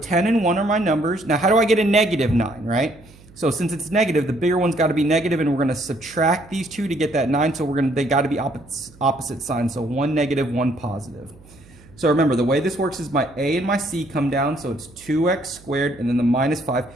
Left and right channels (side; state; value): right; noise; hum, 24 dB below the sound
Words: and 1 are my numbers. Now how do I get a -9, right? So since it's negative, the bigger one's got to be negative, and we're going to subtract these two to get that 9. So they got to be opposite signs. So one negative, one positive. So remember, the way this works is my A and my C come down, so it's 2x squared and then the -5,